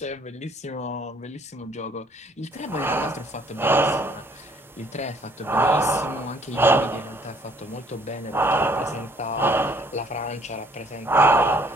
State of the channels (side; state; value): both; normal; correlation 0.61